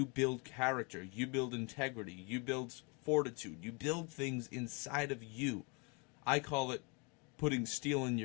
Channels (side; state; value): right; quieter; 32.3 dB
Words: build character, you build integrity, you build fortitude, you build things inside of you. I call it putting steel in